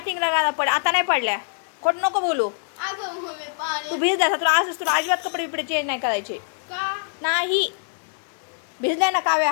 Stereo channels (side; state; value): right; silent; digital silence